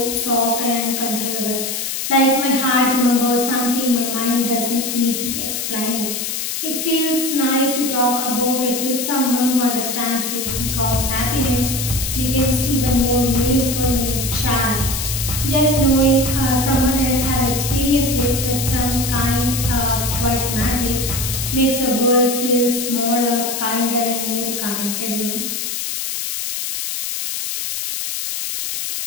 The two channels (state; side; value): noise; left; hiss, 3 dB below the sound